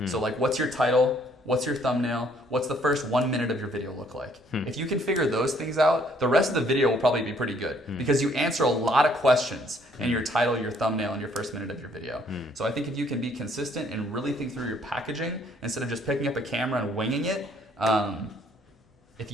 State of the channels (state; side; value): normal; both; correlation 0.64